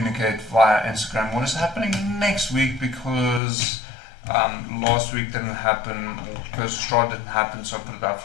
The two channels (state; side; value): drops out; right; at 3.4 s